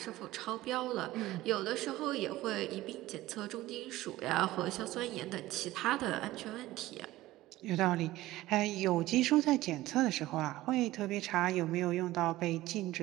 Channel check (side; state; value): left; quieter; 16.7 dB